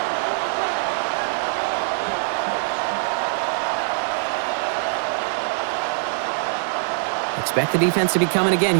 Expect the defense to be coming again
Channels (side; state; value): left; silent; digital silence